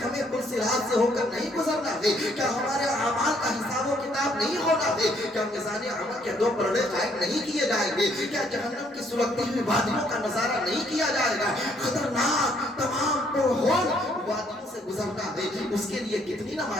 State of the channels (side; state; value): both; normal; correlation 0.67